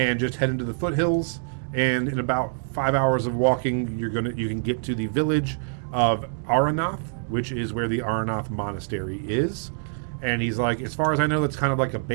just head into the foothills. And in about 5 hours of walking, you can get to the village of Aronoth, which is where the Aronoth Monastery is. And he's like, as far as I know, that's kind of like a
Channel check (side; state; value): left; silent; 62 dB below the other